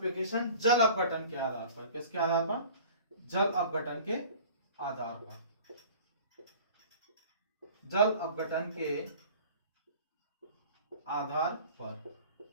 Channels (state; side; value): inverted; both; correlation -0.45